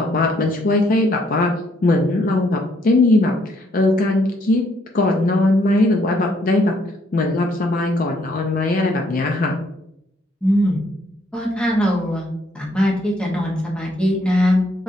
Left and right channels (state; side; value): normal; both; correlation 0.69